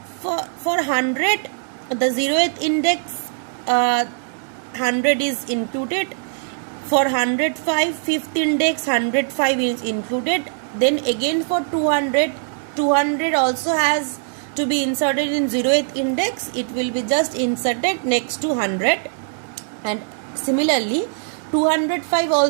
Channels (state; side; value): silent; left; 65 dB below the other